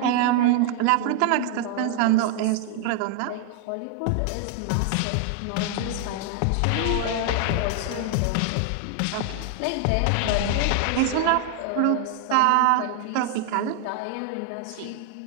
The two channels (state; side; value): different; both; correlation 0.00